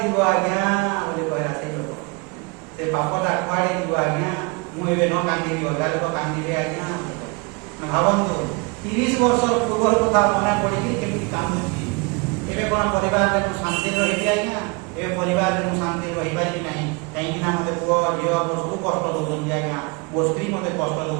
ଯିବ ଆଜ୍ଞା ବୋଲି କହିଲା ସେଇ ଲୋକ। ସେ ପାପଟା କୁଆଡ଼େ ଯିବ ଆଜ୍ଞା, ମୁଁ ଏବେ ନ କାନ୍ଦିବି ଅଲଗା ଲୋକ କାନ୍ଦିବେ ଆଜ୍ଞା। ଭାବନ୍ତୁ 30 ବର୍ଷର ପୂର୍ବର କଥା ମନେ ପଡ଼ିକି କେମିତି କାନ୍ଦୁଛି। ଏବେ କ'ଣ ପରିବାରରେ ମୁଁ ଶାନ୍ତିରେ ରହିବି ଆଜ୍ଞା, ଏବେ ପରିବାରରେ ମୁଁ ଶାନ୍ତିରେ ରହିପାରିବି ନାହିଁ, କାହିଁକିନା ମୋତେ ପୁଅ ଝିଅ ମୋ ସବୁ କଷ୍ଟ ଦେଉଛନ୍ତି ଆଜ୍ଞା, ମୋ ସ୍ତ୍ରୀ ମୋତେ କଷ୍ଟ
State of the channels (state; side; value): quieter; left; 29.5 dB